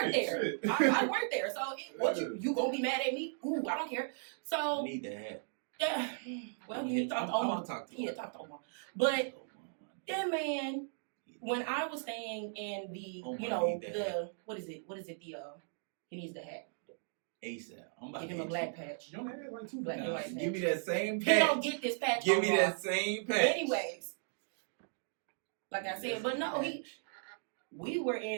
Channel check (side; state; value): left; silent; digital silence